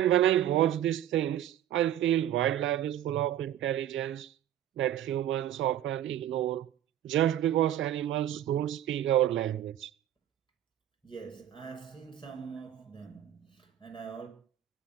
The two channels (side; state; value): left; quieter; 11.6 dB